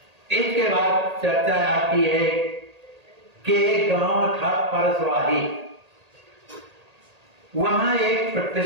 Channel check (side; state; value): left; late; 1.8 ms